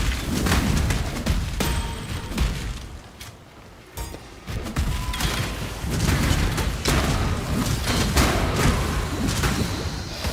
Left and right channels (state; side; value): identical; both; correlation 1.00